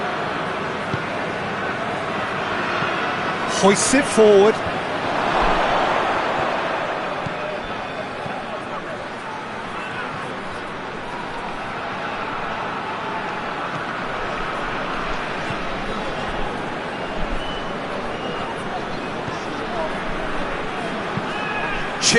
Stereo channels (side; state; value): both; identical; correlation 1.00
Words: Hoists it forward.